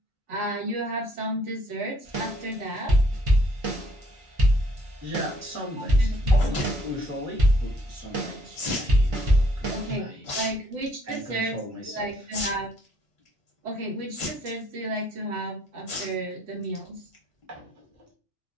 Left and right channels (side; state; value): both; normal; correlation 0.65